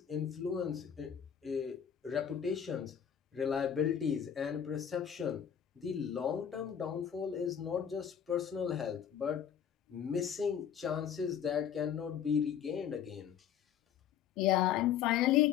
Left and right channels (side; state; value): right; quieter; 8.7 dB